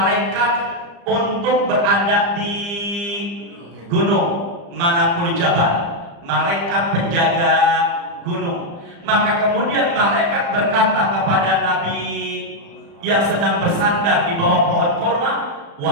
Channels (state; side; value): late; left; 35 ms